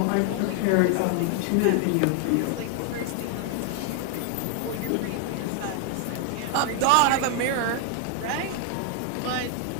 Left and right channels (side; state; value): both; different; correlation 0.00